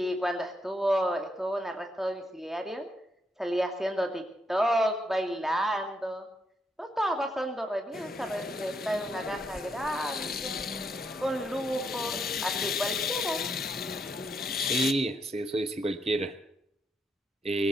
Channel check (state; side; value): normal; both; correlation 0.77